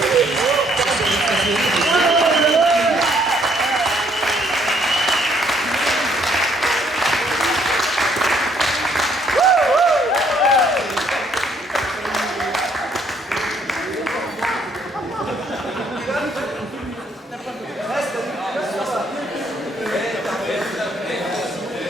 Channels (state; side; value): normal; both; correlation 0.67